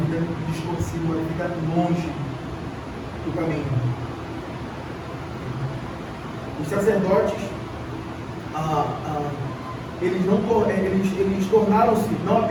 distorcida, uma vida longe do caminho. Os sacerdotes, eles tornaram-se não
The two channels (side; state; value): both; identical; correlation 1.00